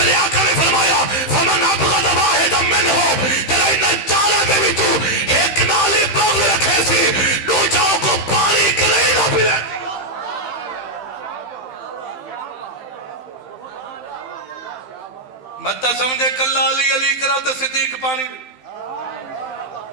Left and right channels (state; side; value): late; right; 16 ms